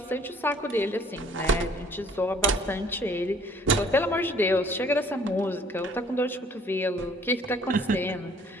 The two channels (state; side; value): normal; both; correlation 0.57